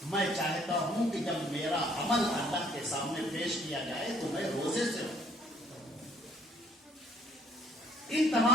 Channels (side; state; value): both; normal; correlation 0.61